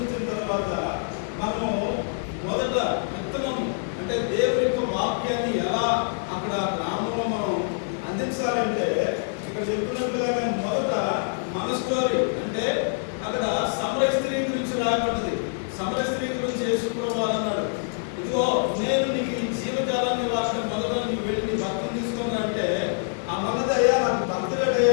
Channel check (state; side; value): silent; right; 61 dB below the other